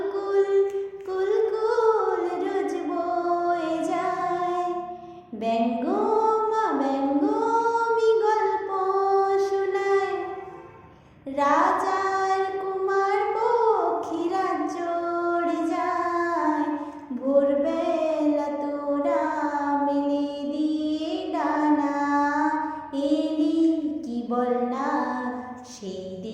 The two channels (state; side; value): identical; both; correlation 1.00